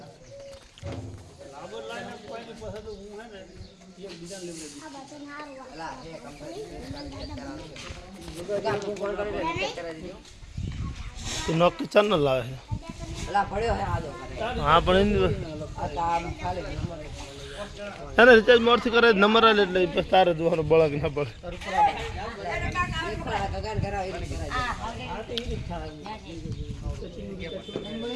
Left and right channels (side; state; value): both; identical; correlation 1.00